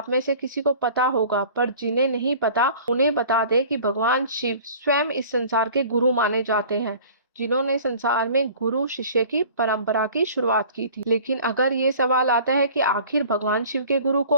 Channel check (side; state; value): both; inverted; correlation -0.46